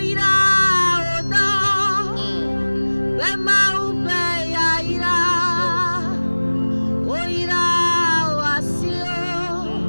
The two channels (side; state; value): both; inverted; correlation -1.00